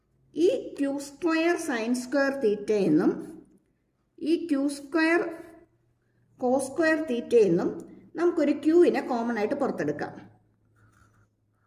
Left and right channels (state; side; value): identical; both; correlation 1.00